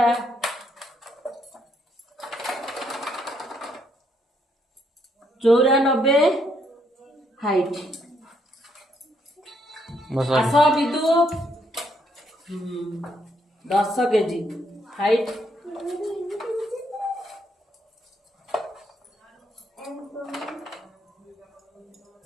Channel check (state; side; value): normal; both; correlation 0.73